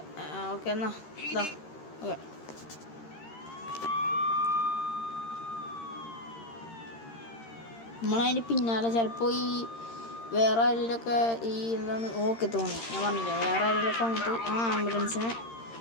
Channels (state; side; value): late; right; 13 ms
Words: ഓക്കെ, എന്നാ ഓക്കെ. നമ്മളതിൻ്റെ പിന്നാലെ ചിലപ്പോൾ ഈ വേറെ ആരെങ്കിലുമൊക്കെ ഈ എന്താണ് ഓക്കെ തോന്നി. ഞാൻ പറഞ്ഞില്ലേ, വേറെ ആരെങ്കിലുമൊക്കെ വന്നിട്ട് ആ ആംബുലൻസിനെ